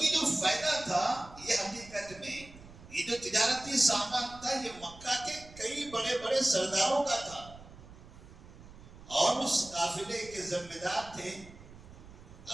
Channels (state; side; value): noise; right; rumble, 19 dB below the sound